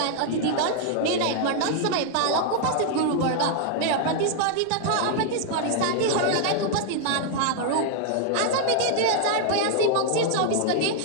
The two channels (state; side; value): different; both; correlation 0.00